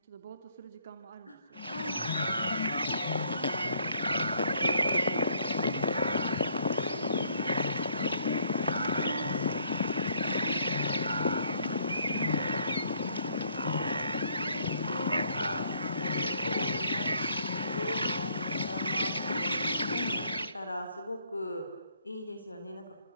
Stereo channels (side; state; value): both; inverted; correlation -0.65